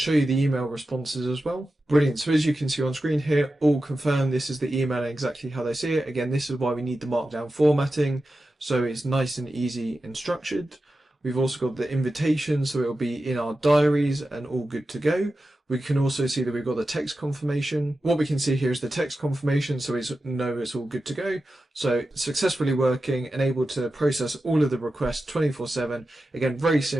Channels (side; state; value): both; normal; correlation 0.92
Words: you the email responses as well. Brilliant. So as you can see on screen here, all confirmed. This is the email and exactly how they see it. Again, this is why we need the markdown formatting, so it's nice and easy and structured. We've also got the invitation, so it'll be in our diaries and all good to go. We can also see that we've got the text confirmation. What we can see here is the text confirmation, so we know it's all good to go. So successfully working and able to process all of the requests 24/7. Again, very